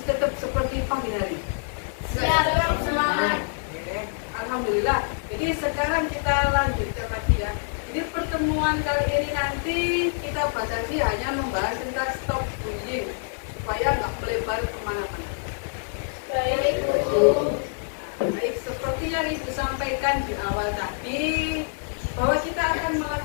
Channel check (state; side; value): silent; right; 60 dB below the other